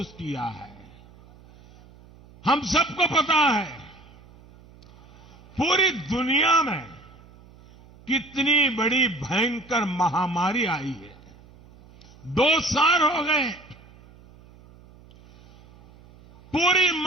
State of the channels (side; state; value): right; noise; hum, 24 dB below the sound